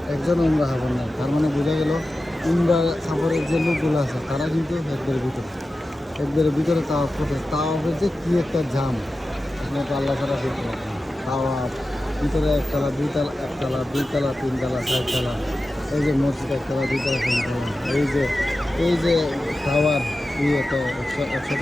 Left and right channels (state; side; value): normal; both; correlation 0.93